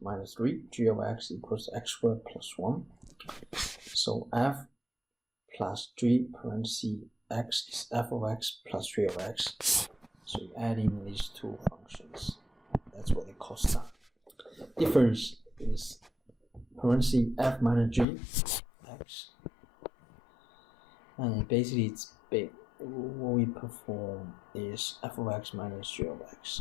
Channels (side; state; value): right; drops out; at 18.1 s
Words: 3, g of x equals x squared plus 1. So f plus g parentheses x is f of x plus 3 of x. So you add in these two functions. That's what they call sum. Difference is parentheses f minus g x. And basically it's big. What we perform is f of x minus g of